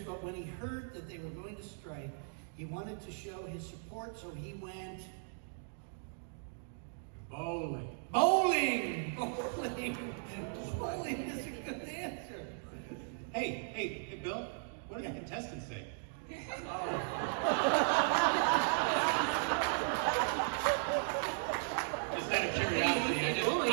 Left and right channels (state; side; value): silent; left; digital silence